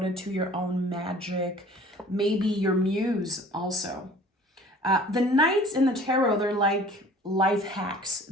to your own magic, maybe your muse also. The knights in the tarot, they're like life hacks.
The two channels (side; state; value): both; normal; correlation 0.49